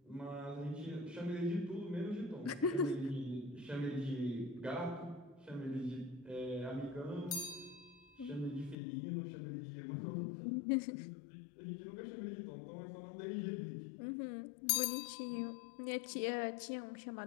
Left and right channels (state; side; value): drops out; right; at 8.8 s